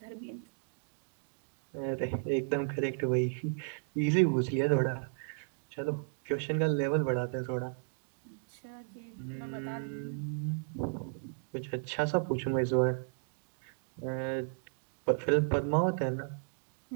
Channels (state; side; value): silent; left; digital silence